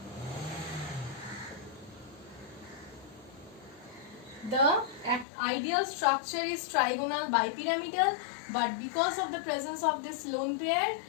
the ideal structure is trigonal bipyramidal, but because of the presence of this lone pair,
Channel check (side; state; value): right; drops out; at 5.2 s